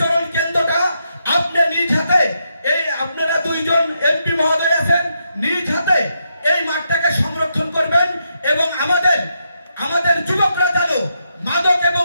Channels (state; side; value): inverted; both; correlation -0.81